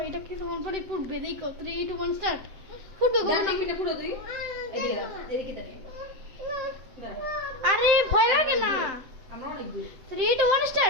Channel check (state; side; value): late; left; 7.8 ms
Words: এটা কিছুক্ষণ পরে ফুটবে দেখো 3 2 1 স্টার্ট ফুটবে কখন দাঁড়া মিনিট পুরো তুই এদিকে দাও এদিকে দাঁড়িয়ে আরে ভয় লাগে না আমরা অনেক দূর 3 2 1